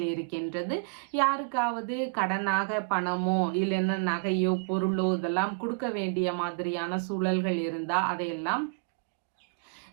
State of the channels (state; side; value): quieter; left; 37.0 dB